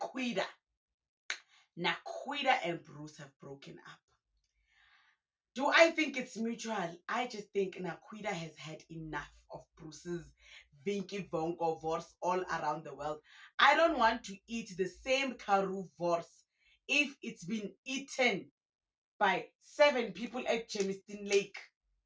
Nakwida and Bruce have broken up. Do I think it's mutual? I just think Nakwida has had enough of Bruce's Vinky Vonko vorse all around the world. I don't want to eat the same Karoo vorse if it's been eaten by 7 people at Chemiston Lake.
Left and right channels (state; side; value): identical; both; correlation 1.00